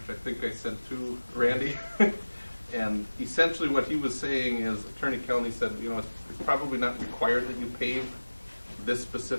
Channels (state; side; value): inverted; both; correlation -1.00